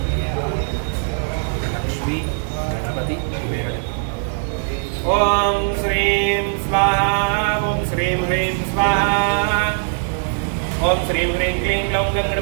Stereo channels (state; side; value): silent; left; 66 dB below the other